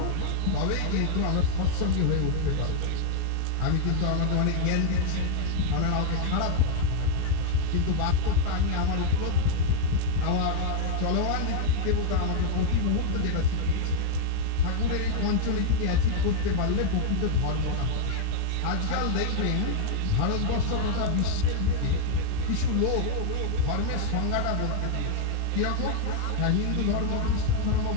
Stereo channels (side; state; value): both; different; correlation 0.00